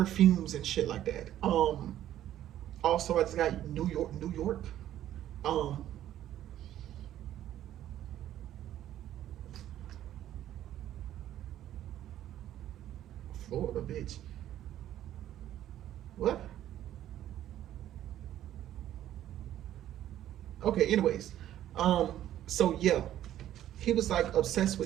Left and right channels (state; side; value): quieter; left; 12.2 dB